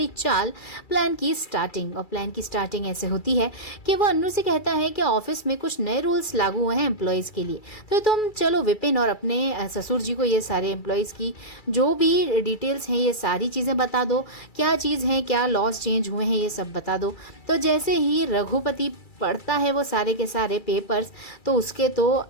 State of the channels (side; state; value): right; late; 2.3 ms